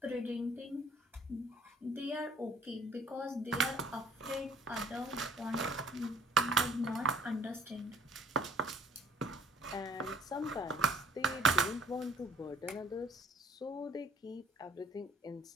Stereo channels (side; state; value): both; normal; correlation 0.56